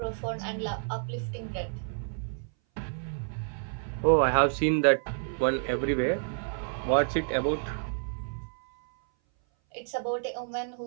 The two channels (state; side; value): silent; left; 57 dB below the other